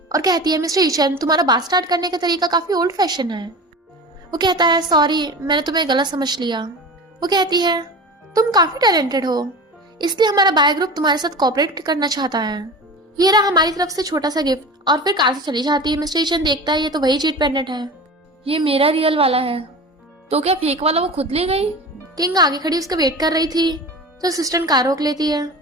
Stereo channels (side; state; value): both; normal; correlation 0.33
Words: और कहती है मिस्टर यीचन तुम्हारा बात स्टार्ट करने का तरीका काफी ओल्ड फैशन है। वो कहता है सॉरी मैंने तुम्हें गलत समझ लिया। वो कहती है तुम काफी टैलेंटेड हो, इसलिए हमारा बाय ग्रुप तुम्हारे साथ कोऑपरेट करना चाहता है। ये रहा हमारी तरफ से छोटा सा गिफ्ट। और फिर कार से चली जाती है। मिस्टर यीचन देखता है ये तो वही जेट पेंडेंट है, ये मेरा रियल वाला है। तो क्या फेक वाला वो खुद ले गई? किंग आगे खड़ी उसका वेट कर रही थी तो असिस्टेंट कार रोक लेती है